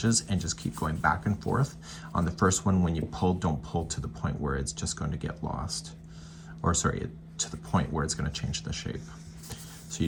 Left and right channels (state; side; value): identical; both; correlation 1.00